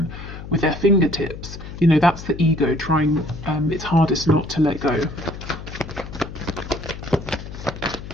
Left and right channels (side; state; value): left; noise; hum, 11 dB below the sound